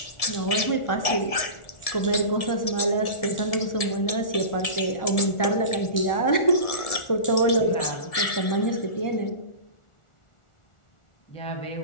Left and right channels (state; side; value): late; right; 1.7 ms